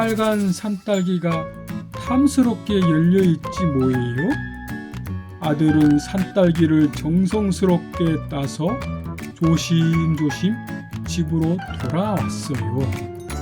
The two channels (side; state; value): both; identical; correlation 1.00